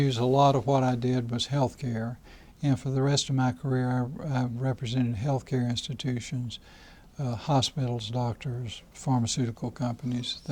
a lot of what I did was health care, And for the rest of my career, I represented healthcare institutions, hospitals, doctors, pharmaceutical companies,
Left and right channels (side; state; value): both; identical; correlation 1.00